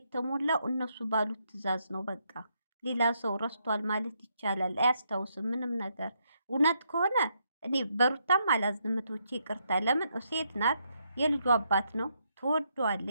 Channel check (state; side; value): inverted; both; correlation -0.77